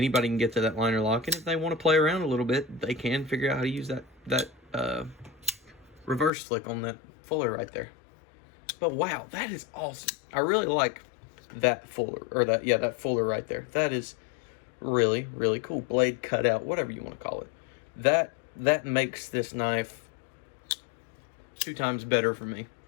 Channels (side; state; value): right; drops out; at 6.3 s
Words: can get to that liner lock, and if they want to play around a little bit, they can figure out how to use that reverse flick on that fuller right there. But wow, that is awesome. I really like that fuller, or that fuller right there. That is really, really cool. Blade cutout, whatever you want to call it. That makes this knife 2 times better for me,